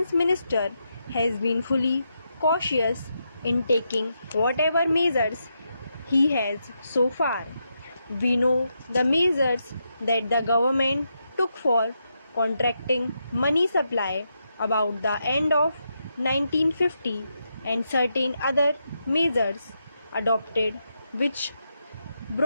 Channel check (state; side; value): inverted; both; correlation -0.83